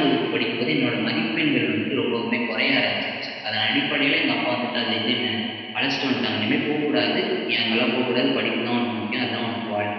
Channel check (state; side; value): identical; both; correlation 1.00